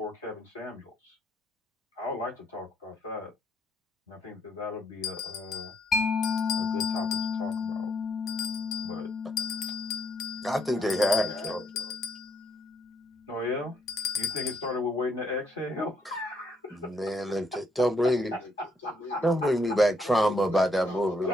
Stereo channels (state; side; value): normal; both; correlation 0.72